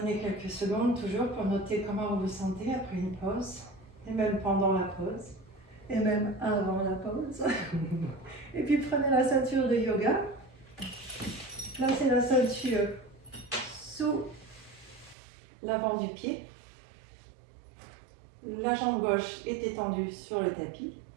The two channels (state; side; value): drops out; left; at 15.2 s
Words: quelques secondes toujours pour noter comment vous vous sentez après une pause, et même pendant la pause, et même avant la pause. Et puis prenez la ceinture de yoga. Placez la ceinture sous l'avant du pied. La jambe gauche est étendue sur le tapis.